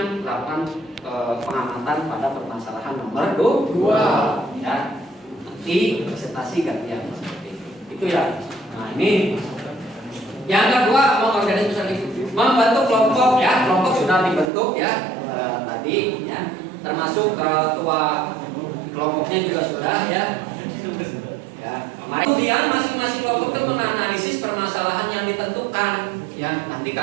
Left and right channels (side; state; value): left; drops out; at 14.5 s